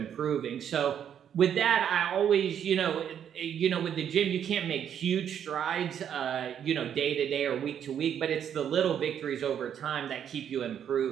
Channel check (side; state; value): left; quieter; 9.0 dB